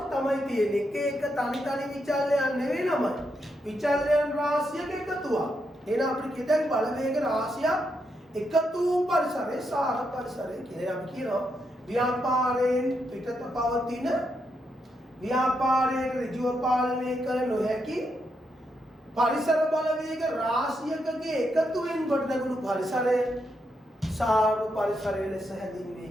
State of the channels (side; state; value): both; normal; correlation 0.81